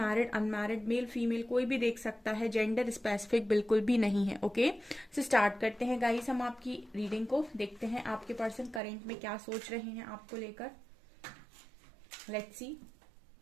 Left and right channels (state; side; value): drops out; left; at 8.8 s